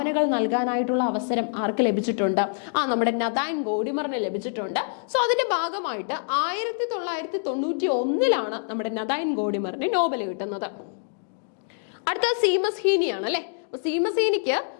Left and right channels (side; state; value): right; silent; digital silence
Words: നൽകാനായിട്ടുള്ള അവസരം ആർക്ക് ലഭിച്ചിട്ടുണ്ട്? നമ്മുടെ നഥാൻ ഗോഡിമറിന് ലഭിച്ചിട്ടുണ്ട്. സോ അതിന്റെ ഭാഗമായിട്ട് 1991 നമ്മുടെ നഥാൻ ഗോഡിമറിന് നോബൽ കിട്ടുന്നത്. അടുത്ത സീമസ് ഹീനിയാണ് അല്ലെ. സീമസ് ഹീനിക്ക്